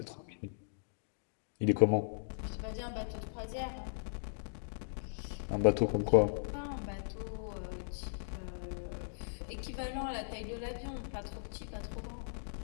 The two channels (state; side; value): silent; right; digital silence